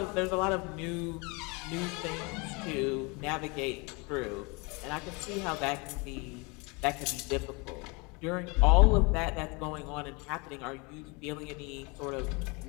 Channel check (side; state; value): right; quieter; 28.9 dB